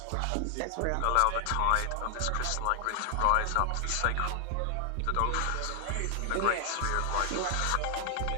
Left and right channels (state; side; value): different; both; correlation 0.00